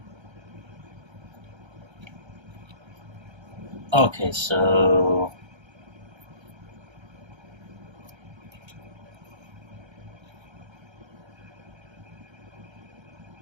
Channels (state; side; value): late; left; 1.3 ms